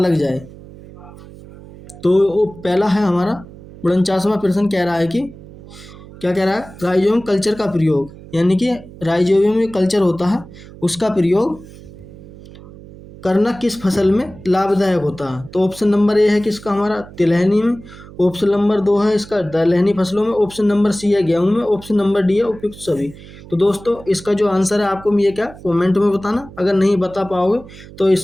जाए। तो वो पहला है हमारा 49वां प्रश्न, कह रहा है कि क्या कह रहा है? राइजोबियम कल्चर का प्रयोग, यानी कि राइजोबियम जो कल्चर होता है उसका प्रयोग करना किस फसल में लाभदायक होता है? तो ऑप्शन नंबर ए है किसका हमारा? तिलहनी में। ऑप्शन नंबर 2 है इसका दलहनी फसलों में। ऑप्शन नंबर सी है गेहूं में। ऑप्शन नंबर डी है उपयुक्त सभी। तो दोस्तों इसका जो आंसर है आपको ये क्या कमेंट में बताना। अगर नहीं बता पाओगे तो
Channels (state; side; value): noise; right; hum, 18 dB below the sound